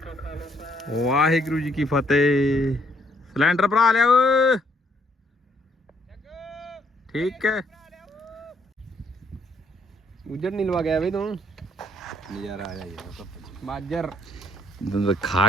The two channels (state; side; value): normal; both; correlation 0.68